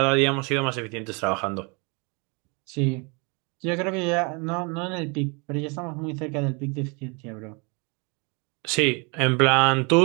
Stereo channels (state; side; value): quieter; left; 31.6 dB